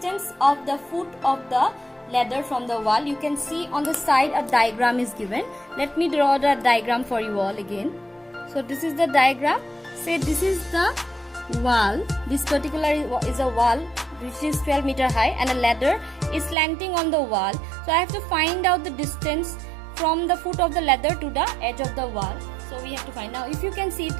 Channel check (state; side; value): drops out; left; at 16.6 s